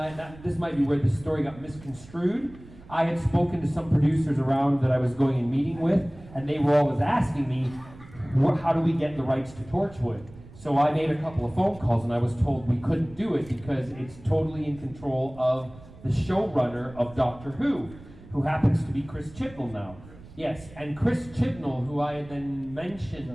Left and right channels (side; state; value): right; noise; rumble, 20 dB below the sound